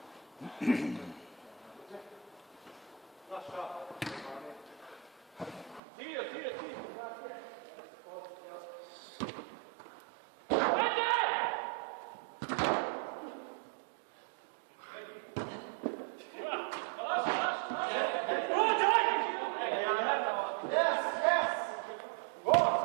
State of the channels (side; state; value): left; drops out; at 5.8 s